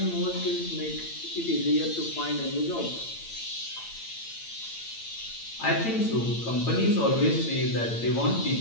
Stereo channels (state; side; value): late; right; 8.8 ms